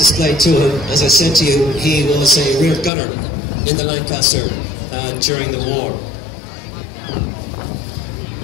to him. As I said to you, he was a rear gunner in the Lancaster during the war.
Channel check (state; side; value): drops out; right; at 2.9 s